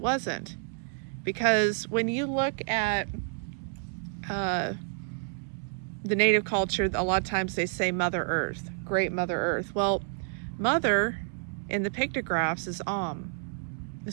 Because when you look at the native culture, a lot of times they say Mother Earth, Great Mother Earth. Well, Mother in the pictographs is Am.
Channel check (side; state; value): left; silent; 58 dB below the other